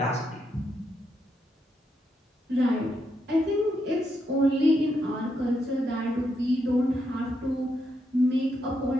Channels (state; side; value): normal; both; correlation 0.80